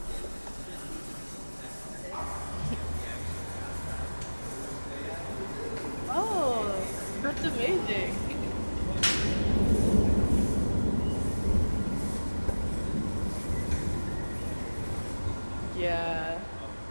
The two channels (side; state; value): both; inverted; correlation -1.00